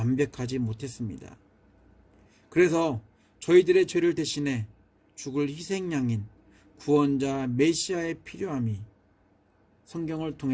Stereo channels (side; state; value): both; identical; correlation 1.00